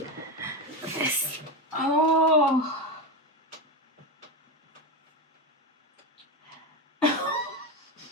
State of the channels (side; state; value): both; normal; correlation 0.16